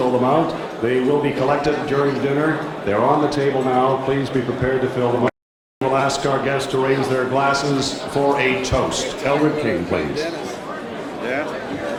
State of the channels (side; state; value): both; identical; correlation 1.00